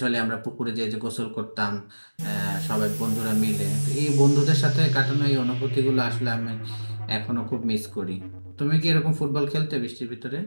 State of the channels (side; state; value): both; inverted; correlation -1.00